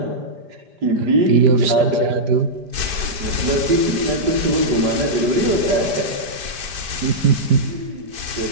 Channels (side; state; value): left; late; 5.0 ms